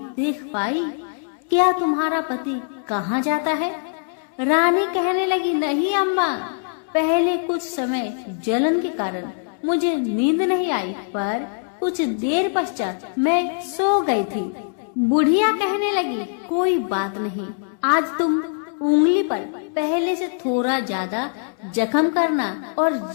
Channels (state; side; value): silent; right; 64 dB below the other